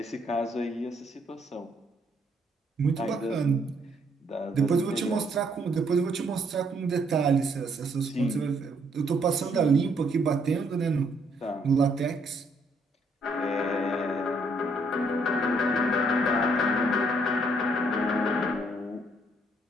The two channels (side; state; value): both; normal; correlation 0.69